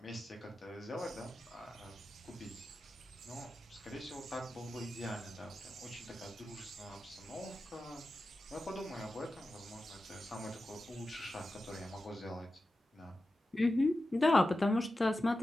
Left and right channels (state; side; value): normal; both; correlation 0.92